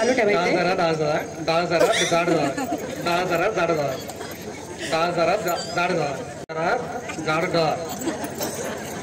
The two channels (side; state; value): both; identical; correlation 1.00